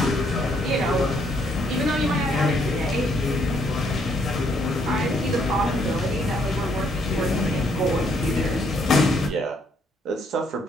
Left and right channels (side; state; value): both; normal; correlation 0.70